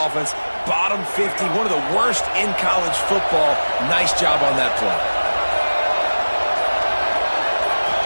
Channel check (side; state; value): both; inverted; correlation -1.00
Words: Bottom 50, one of the worst in college football. Nice job on that play.